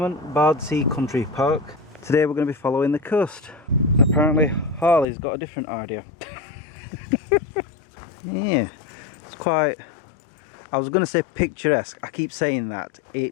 Bardsea Country Park. Today we're going to be following the coast. Apparently Harley's got a different idea. Yeah, it's quite, I was going to say picturesque, I keep saying that.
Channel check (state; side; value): drops out; right; at 5.1 s